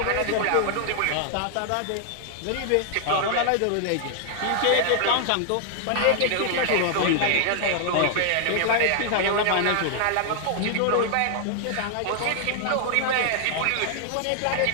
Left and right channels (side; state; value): both; different; correlation 0.00